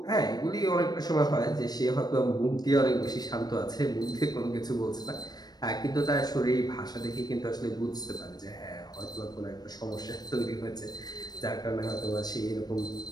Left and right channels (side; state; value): right; late; 0.19 ms